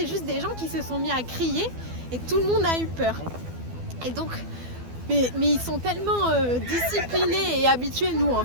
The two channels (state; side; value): late; left; 12 ms